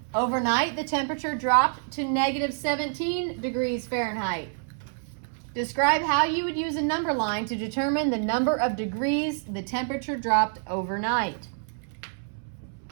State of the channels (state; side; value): silent; left; 60 dB below the other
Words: Overnight, the temperature dropped to negative 17 degrees Fahrenheit. Describe how you would use a number line to determine the number of degrees the temperature dropped overnight.